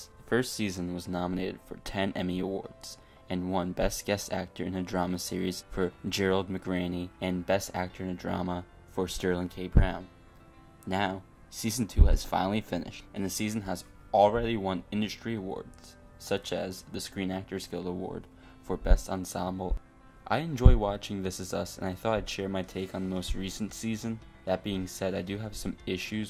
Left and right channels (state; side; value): identical; both; correlation 1.00